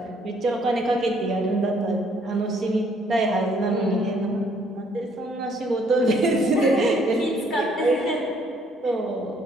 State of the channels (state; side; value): normal; both; correlation 0.65